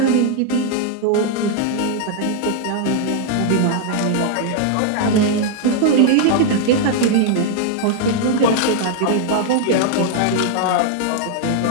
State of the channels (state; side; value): different; both; correlation 0.00